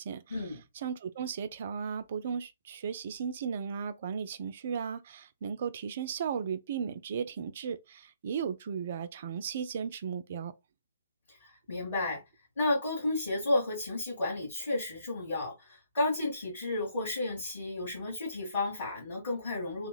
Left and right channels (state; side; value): inverted; both; correlation -0.69